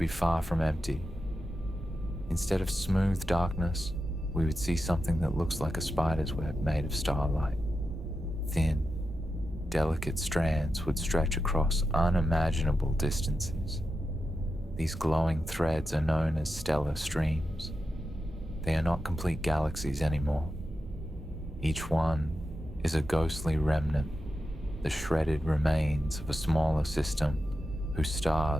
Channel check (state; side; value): normal; both; correlation 0.89